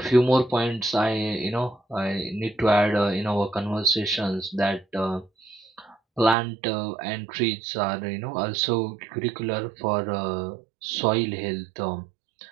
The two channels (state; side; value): drops out; left; at 6.4 s